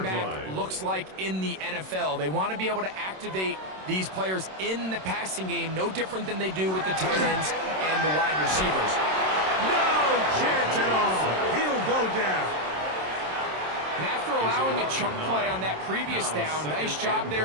back looks like in the NFL. They want to be able to activate these players in the passing game, no different than they do with the tight ends and the wide receivers. No chance at all. He'll go down. And after allowing a chunk play on that previous down, nice job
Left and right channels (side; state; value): left; late; 27 ms